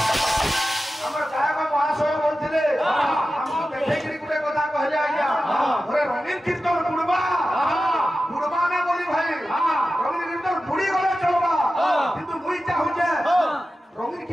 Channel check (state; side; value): normal; both; correlation 0.93